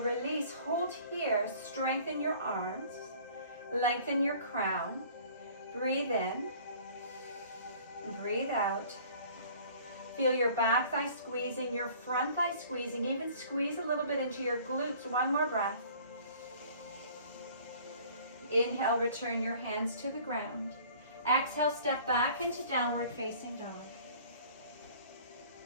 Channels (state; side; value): inverted; both; correlation -0.50